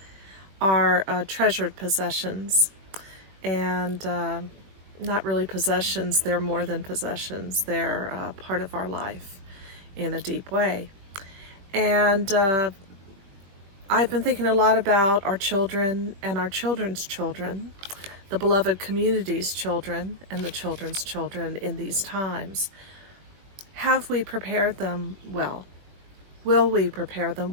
are treasured possessions. And not really possessions, they're more than possessions. They're part of our life in a deep way. And I've been thinking a lot about our children and our children's children, the beloved community's children and the children's children in these times. Have we prepared them well? Will we prepare them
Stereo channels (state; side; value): late; left; 20 ms